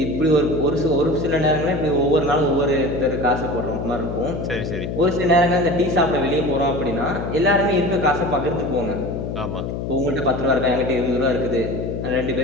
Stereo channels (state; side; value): noise; left; hum, 4 dB below the sound